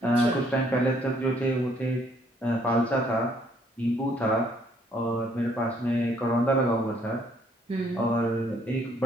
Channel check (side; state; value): both; normal; correlation 0.66